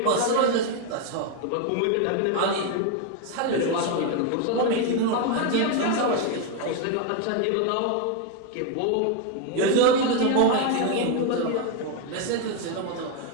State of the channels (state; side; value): different; both; correlation 0.01